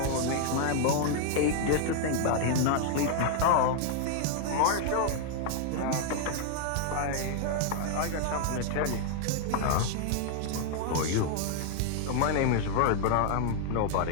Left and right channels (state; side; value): different; both; correlation 0.00